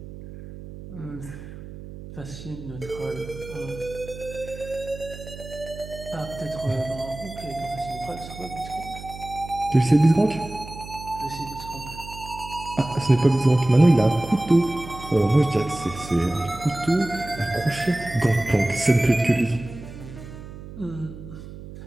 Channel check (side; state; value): right; noise; hum, 13 dB below the sound